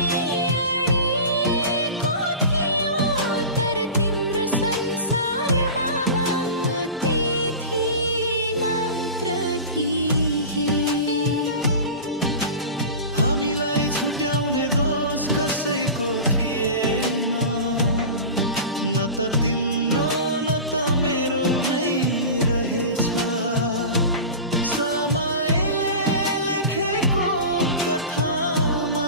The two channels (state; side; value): inverted; both; correlation -0.31